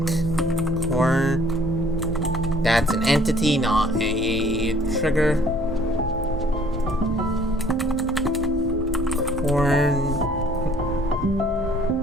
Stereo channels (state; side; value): normal; both; correlation 0.57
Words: That's an entity, not a trigger.